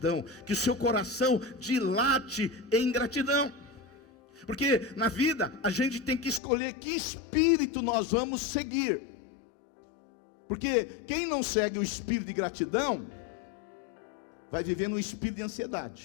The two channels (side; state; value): right; drops out; at 6.4 s